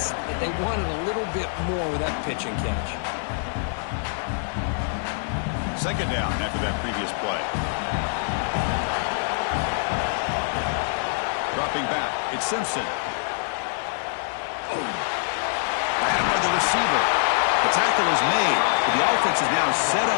that they wanted a little bit more with that pitch and catch. Second down after that previous play. Dropping back. It's Simpson. Ran by the receiver. The tackle is made, but the offense is now set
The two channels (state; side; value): silent; right; digital silence